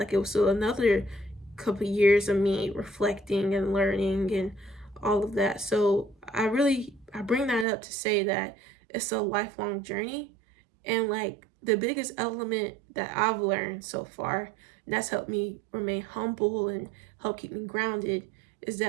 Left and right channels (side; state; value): left; drops out; at 7.7 s